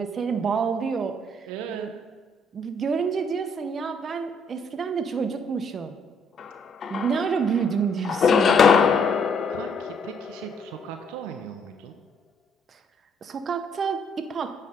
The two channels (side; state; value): both; normal; correlation 0.67